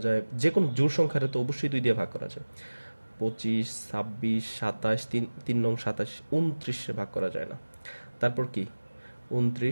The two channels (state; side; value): inverted; both; correlation -1.00